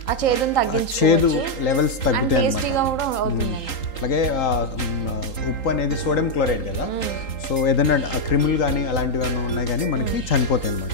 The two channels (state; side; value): late; right; 3.8 ms